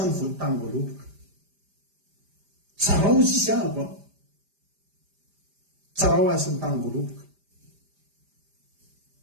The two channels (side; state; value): left; late; 5.0 ms